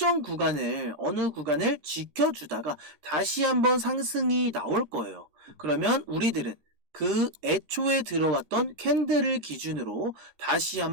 구간을 어느 구간을 지켜주다가 다시 한번 상승이 나올 거예요. 그러면 우리들은 그 애초에 들어왔던 캔들을 기준으로 다시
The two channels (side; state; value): left; late; 13 ms